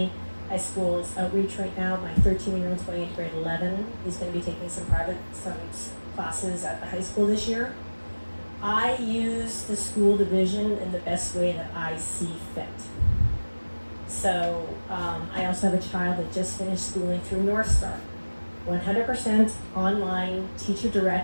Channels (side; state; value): both; inverted; correlation -1.00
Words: I school as outreach right now. My 13-year-old's going into grade 11. He's going to be taking some classes at the high school this year. I use the school division in the best way that I see fit. So I also have a child that just finished schooling through North Star. 100% online,